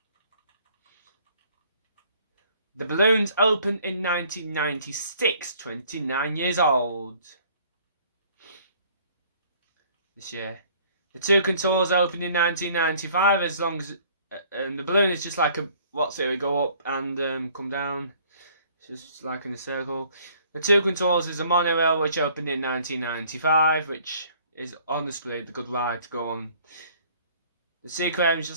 The Balloons opened in 1996, 29 years old. This year. The Two Contours opened in 1995. As long as the balloon is just like we go up and come down. It's just like in a circle. The Two Contours is a monorail which opened in 1995, which is honestly the good ride to go on. The Sea Aquarium is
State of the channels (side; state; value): both; inverted; correlation -0.57